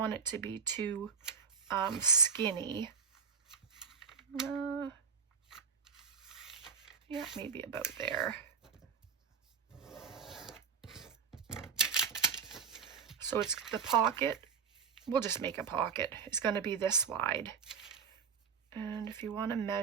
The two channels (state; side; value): quieter; left; 6.4 dB